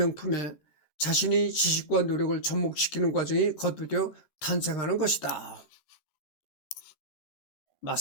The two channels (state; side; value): late; right; 14 ms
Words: 자신의 지식과 노력을 접목시키는 과정이 거듭되어 탄생하는 것이다.